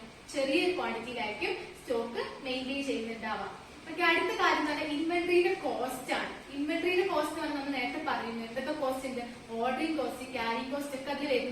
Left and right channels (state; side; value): identical; both; correlation 1.00